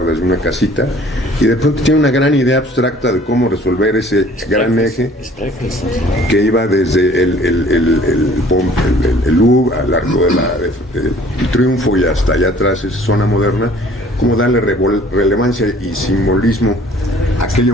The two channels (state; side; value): normal; both; correlation 0.53